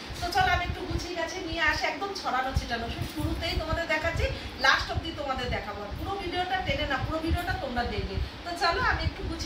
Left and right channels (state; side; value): identical; both; correlation 1.00